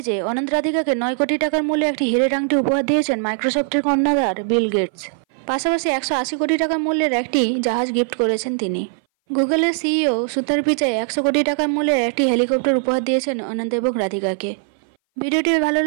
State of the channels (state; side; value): silent; left; 59 dB below the other